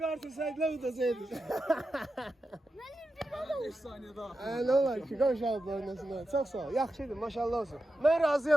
artırsaydılar udasaydı. 5 saniye daha. Ne olar ki, qonşalıb oynasınlar. Çox sağ ol. Yaxşıdır, maşallah olsun. Mən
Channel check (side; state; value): both; normal; correlation 0.90